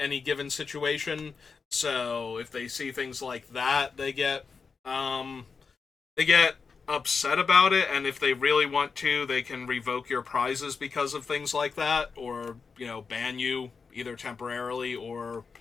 given situation. So if they see things like that, they get upset about it, and if they really want to, they can revoke your prizes because of things like that, or, you know, ban you either temporarily or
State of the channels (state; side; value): quieter; right; 5.2 dB